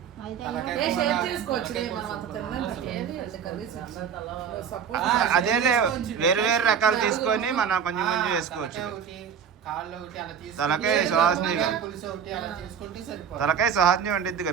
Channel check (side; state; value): left; quieter; 7.6 dB